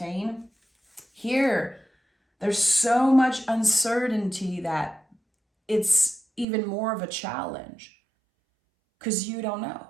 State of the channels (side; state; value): left; drops out; at 6.5 s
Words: Here, there's so much uncertainty that it's even more of a challenge because you don't know.